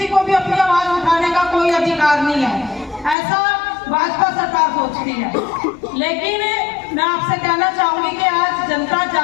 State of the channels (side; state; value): right; drops out; at 3.2 s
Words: को भी अपनी आवाज उठाने का कोई अधिकार नहीं है, ऐसा भाजपा सरकार सोचती है। लेकिन मैं आपसे कहना चाहूंगी कि आज जनता